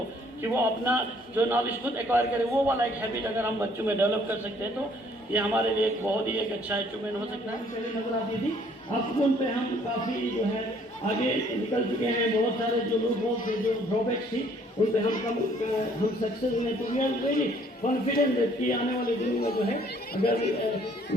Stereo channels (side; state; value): both; normal; correlation 0.61